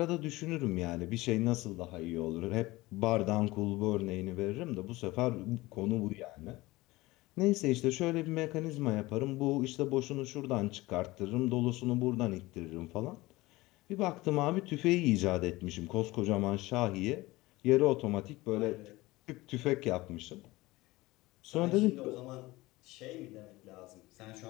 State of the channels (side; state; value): right; quieter; 20.0 dB